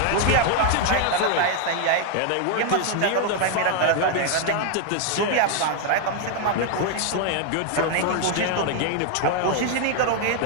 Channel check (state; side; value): different; both; correlation 0.00